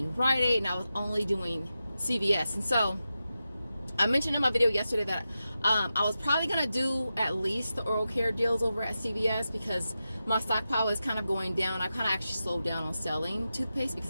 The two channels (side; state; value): both; inverted; correlation -0.91